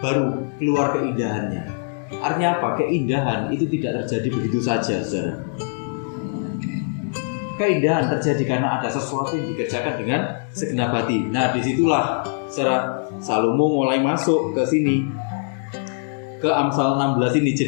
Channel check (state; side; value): silent; right; digital silence